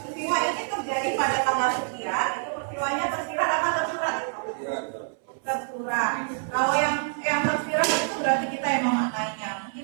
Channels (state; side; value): silent; left; 60 dB below the other